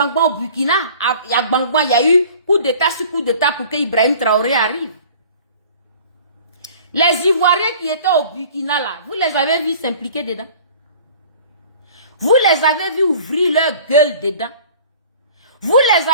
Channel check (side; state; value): both; inverted; correlation -0.47